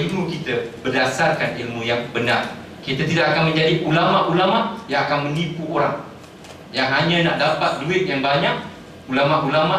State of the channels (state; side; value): identical; both; correlation 1.00